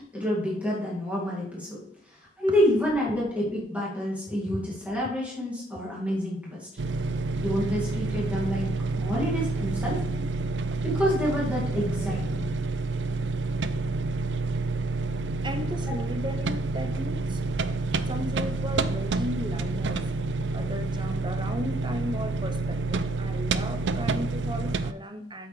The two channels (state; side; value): normal; both; correlation 0.69